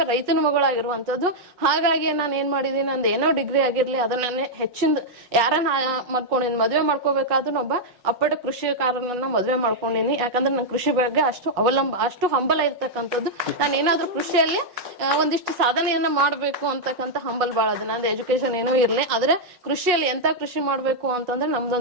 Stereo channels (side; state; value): left; late; 5.4 ms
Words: ರೈತನ ಮಗಳಾಗಿರುವಂತದ್ದು. ಹಾಗಾಗಿ ನಾನು ಏನ್ ಮಾಡಿದೀನಿ, ನಂದು ಏನೋ ಡಿಗ್ರಿ ಆಗಿರ್ಲಿ ಅದನ್ನ ಹೆಚ್ಚಿಂದ ಯಾರನ್ನ ಮಾಡ್ಕೊಂಡಿನಿ, ಮದ್ವೆ ಮಾಡ್ಕೋಬೇಕಾದ್ರೂ ಒಬ್ಬ ಅಪ್ಪಟ ಕೃಷಿಕಾರನನ್ನ ಮದ್ವೆ ಮಾಡ್ಕೊಂಡಿನಿ. ಯಾಕಂದ್ರೆ ನನ್ ಕೃಷಿ ಬಗ್ಗೆ ಅಷ್ಟು ಹಂಬಲ ಇರ್ತಕ್ಕಂಥದ್ದು. ನಾನು ಏನಾದ್ರೂ ಕೃಷಿಯಲ್ಲಿ ಒಂದಿಷ್ಟು ಸಾಧನೆಯನ್ನ ಮಾಡ್ಬೇಕು ಅಂತಕ್ಕಂಥ ಹಂಬಲ್ ಬಾಳ ಅದ. ನಂದು ಎಜುಕೇಶನ್ ಏನೂ ಇರ್ಲಿ, ಆದ್ರೆ ಕೃಷಿಯಲ್ಲಿ ಎಂತ ಕೃಷಿ ಮಾಡ್ಬೇಕು ಅಂತಂದ್ರೆ